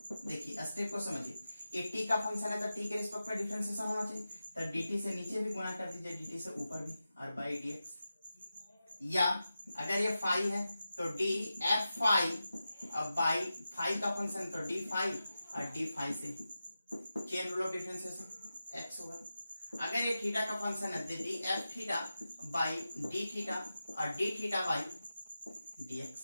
देखिए स्टेप को समझिए। एक टी का फंक्शन है तो टी के रिस्पेक्ट में डिफरेंशिएशन होना चाहिए, तो dt से नीचे भी गुना कर दीजिए, dt से ऊपर भी, और बाई dx। या अगर ये फाई है तो डी एफ फाई, अब बाई फाई का फंक्शन तो डी फाई, और डी फाई से chain rule of differentiation x होगा। अगर ये थीटा का फंक्शन है d F theta by D theta, और d theta by D x,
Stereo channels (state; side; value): inverted; both; correlation -0.92